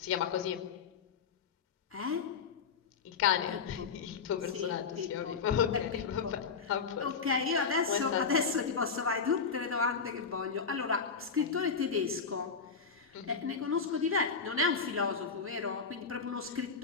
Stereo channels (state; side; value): quieter; right; 5.5 dB